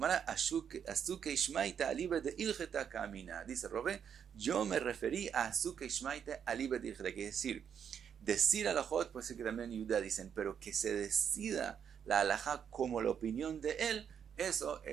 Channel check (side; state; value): left; quieter; 8.0 dB